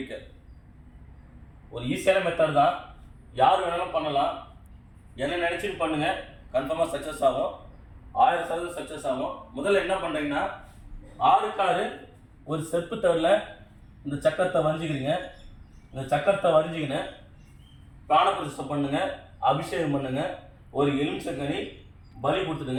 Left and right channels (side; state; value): both; identical; correlation 1.00